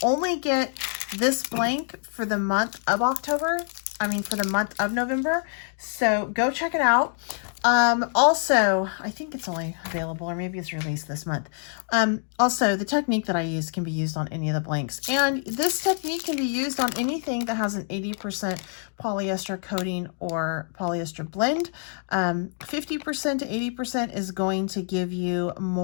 only get this blank for the month of October. I mean, for the month of November. So go check it out. Also, I think it's only available, or maybe it's released this month. Also, the technique that I use can be used on any of the blanks. And this technique can be used on anything that has an 80% polyester coating or polyester blend. 50% to 80% is going to give you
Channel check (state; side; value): silent; right; 61 dB below the other